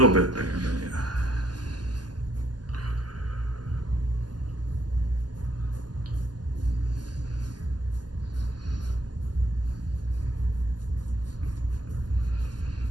little bit there, but yeah.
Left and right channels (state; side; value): late; left; 0.70 ms